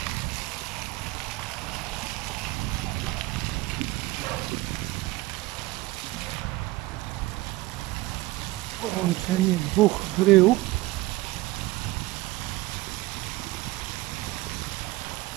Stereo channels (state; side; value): quieter; left; 19.3 dB